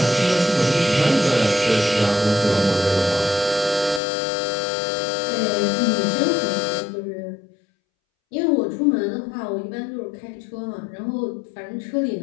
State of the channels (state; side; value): drops out; right; at 4.0 s